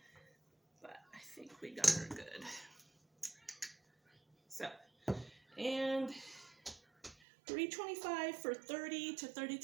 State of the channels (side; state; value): left; drops out; at 7.2 s